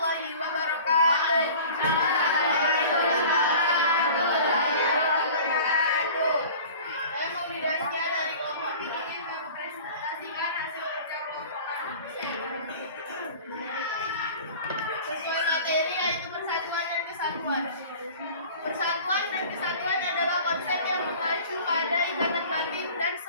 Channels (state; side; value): inverted; both; correlation -0.43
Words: wabarakatuh. Saya Maudi Dasya dari kelompok ini mempresentasikan hasil kerja kelompok kami. Sesuai materi yaitu persatuan dan kesatuan. Persatuan dan kesatuan adalah konsep yang mengacu pada ikatan batin dan